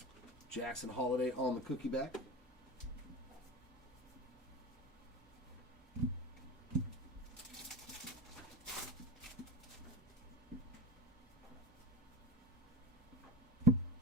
Jackson Holiday on the cookie back.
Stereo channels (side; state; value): both; normal; correlation 0.29